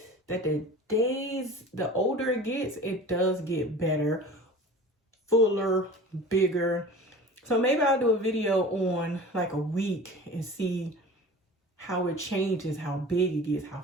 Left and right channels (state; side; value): normal; both; correlation 0.39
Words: that the older it gets, it does get better, fuller, bigger. So maybe I'll do a video on like a week and see how it changes, how big it gets, how